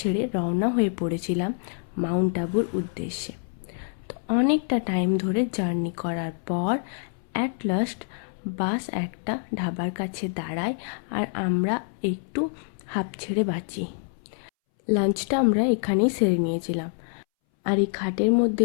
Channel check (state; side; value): silent; right; 61 dB below the other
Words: ছেড়ে রওনা হয়ে পড়েছিলাম মাউন্ট আবুর উদ্দেশ্যে। তো অনেকটা টাইম ধরে জার্নি করার পর অ্যাট লাস্ট বাস একটা ধাবার কাছে দাঁড়ায় আর আমরা একটু হাঁপ ছেড়ে বাঁচি। লাঞ্চটা আমরা এখানেই সেরে নিয়েছিলাম। আর এই খাটের মধ্যে